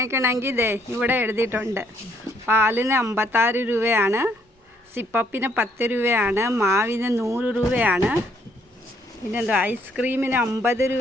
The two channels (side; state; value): both; normal; correlation 0.68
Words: ദേ ഇവിടെ എഴുതിയിട്ടുണ്ട്. പാലിന് 56 രൂപയാണ്, സിപ്പപ്പിന് 10 രൂപയാണ്, മാവിന് 100 രൂപയാണ്, പിന്നെന്താ ഐസ്ക്രീമിന് 50